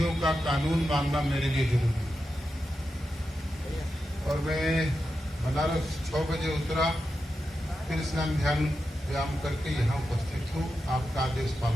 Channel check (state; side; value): normal; both; correlation 0.89